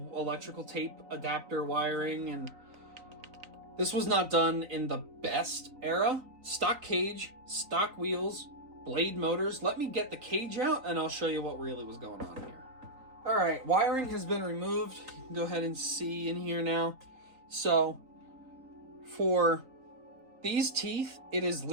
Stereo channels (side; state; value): left; late; 3.9 ms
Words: electrical tape adapter wiring, and this was not done in the best era. Stock cage, stock wheels, blade motors. Let me get the cage out and I'll show you what really was going on here. Alright, wiring has been removed. You can go ahead and see in here now. So, for these teeth, it is